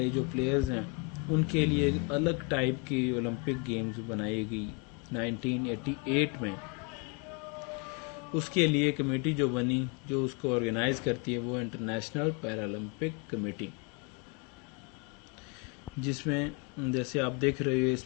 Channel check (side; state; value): right; quieter; 29.6 dB